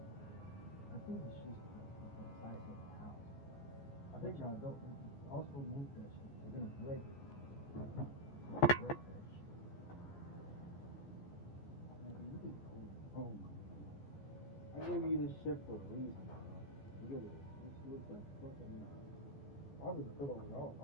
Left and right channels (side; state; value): right; late; 14 ms